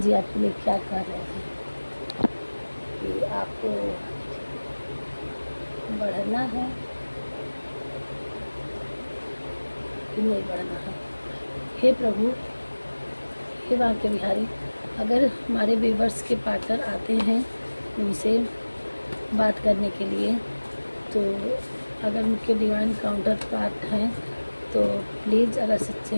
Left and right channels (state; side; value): inverted; both; correlation -1.00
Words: जी आपके लिए क्या कर रहे हैं कि आपको बढ़ना है कि नहीं बढ़ना है। हे प्रभु, हे बांके बिहारी, अगर हमारे व्यूवर्स के पार्टनर आते हैं उनसे बात करने के लिए, तो अगर उनके डिवाइन काउंटर पार्ट हैं तो प्लीज़ अगर सच्चे